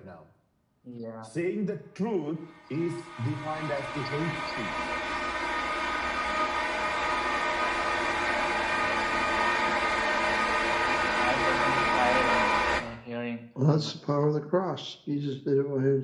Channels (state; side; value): identical; both; correlation 1.00